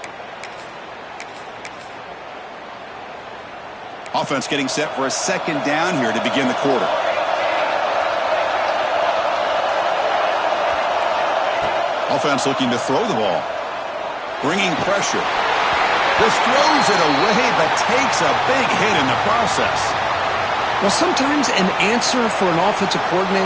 Offense getting set for a 2nd down here to begin the quarter. Offense looking to throw the ball. Bringing pressure. Just throws it away, but takes a big hit in the process. Well, sometimes an answer for an offensive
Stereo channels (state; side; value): identical; both; correlation 1.00